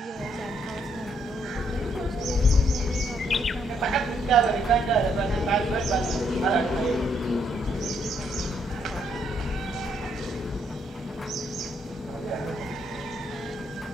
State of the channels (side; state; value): both; normal; correlation 0.72